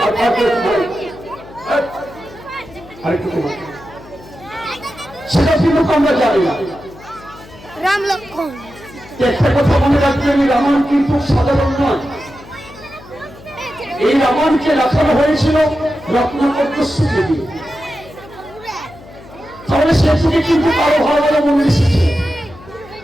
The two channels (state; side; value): noise; left; hum, 20 dB below the sound